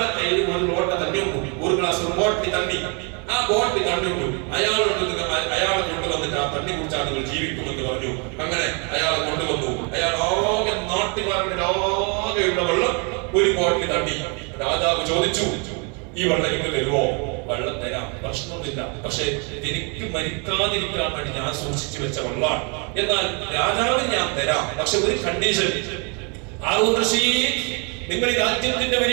കയ്യിൽ ഒരു ലോട്ട തണ്ണി ഉണ്ടു, ഒരു ഗ്ലാസ് ഒരു ബോട്ടിൽ തണ്ണി, ആ ബോട്ടിൽ തണ്ണി ഉണ്ടു, അയാളെ കൊണ്ടുവന്നിട്ട് ആ തണ്ണി കുടിച്ചാൽ നിങ്ങൾ ജീവിക്കുമെന്ന് പറഞ്ഞു. അങ്ങനെ അയാളെ കൊണ്ടുവന്നു. അയാൾ ആകെ നാട്ടുകാരുടെ ആകെയുള്ള വെള്ളം ഒരു ബോട്ടിൽ തണ്ണി. രാജാവ് ചോദിച്ചു, ഈ വെള്ളം എനിക്ക് തരുമോ? വെള്ളം തരാം, പ്രശ്നമൊന്നുമില്ല, പക്ഷെ എനിക്ക് മരിക്കാതിരിക്കാൻ വേണ്ടി ഞാൻ സൂക്ഷിച്ചു വെച്ച വെള്ളമാണ്, എന്നാൽ രാജാവിന് ഞാൻ തരാം, പക്ഷെ ഒരു കണ്ടീഷൻ. ഹാറൂൻ റഷീദ്, നിങ്ങൾ ഈ രാജ്യത്തിന്റെ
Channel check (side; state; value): left; quieter; 34.7 dB